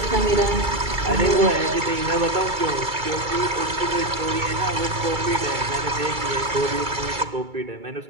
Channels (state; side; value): late; left; 2.3 ms